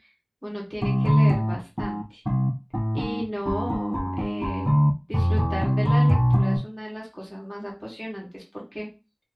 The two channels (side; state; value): both; identical; correlation 1.00